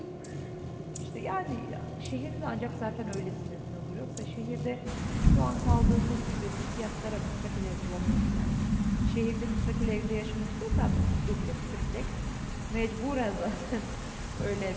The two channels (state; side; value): identical; both; correlation 1.00